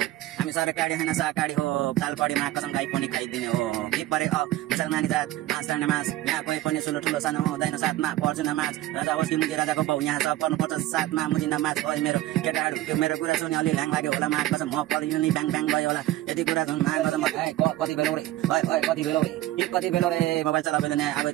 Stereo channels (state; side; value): quieter; left; 15.4 dB